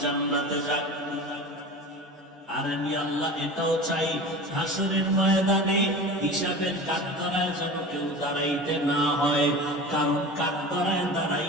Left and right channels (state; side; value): normal; both; correlation 0.34